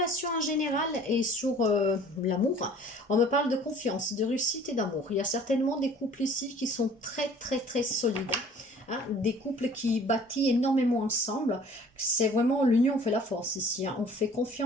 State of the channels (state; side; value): normal; both; correlation 0.51